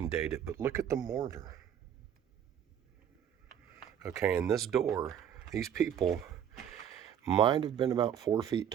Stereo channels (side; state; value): left; quieter; 9.2 dB